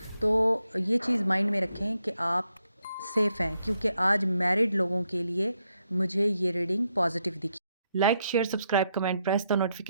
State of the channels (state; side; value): inverted; both; correlation -0.80